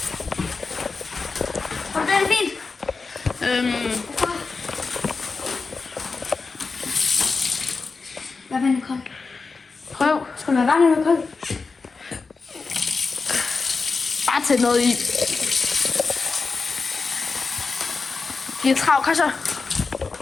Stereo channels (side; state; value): right; quieter; 4.4 dB